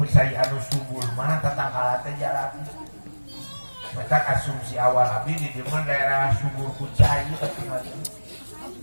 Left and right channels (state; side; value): inverted; both; correlation -1.00